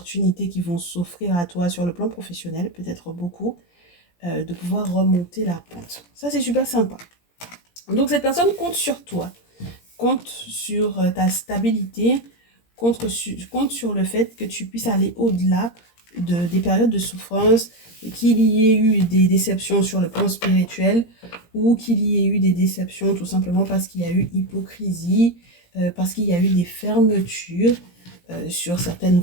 qui vont s'offrir à toi sur le plan professionnel, peut-être beaucoup, de pouvoir remonter la pente. Ça, c'est super sympa. Donc cette personne compte sur toi, compte sur ta stabilité, compte sur le fait que tu puisses aller au-delà des périodes de souffrance, qu'il y ait eu des déceptions sur le plan spirituel ou qu'il y ait eu des déceptions tout simplement parce qu'il y a eu hypocrisie, parce qu'il y a eu des fermetures sur certaines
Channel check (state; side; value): late; right; 17 ms